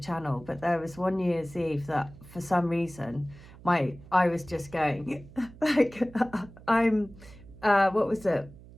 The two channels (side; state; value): right; noise; hum, 20 dB below the sound